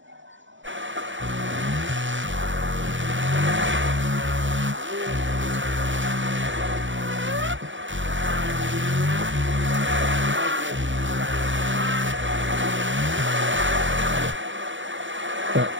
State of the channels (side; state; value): left; late; 0.55 ms